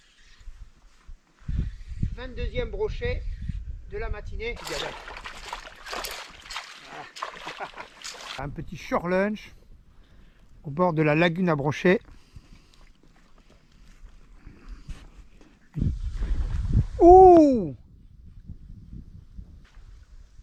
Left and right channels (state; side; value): identical; both; correlation 1.00